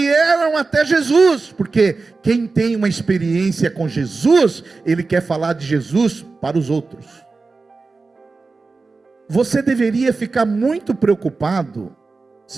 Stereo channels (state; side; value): quieter; left; 4.0 dB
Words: até Jesus, porque quem tem uma experiência com Jesus, ele quer falar de Jesus para os outros. Você deveria ficar muito preocupado,